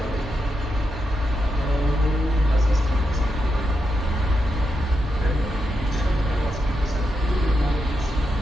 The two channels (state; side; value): normal; both; correlation 0.85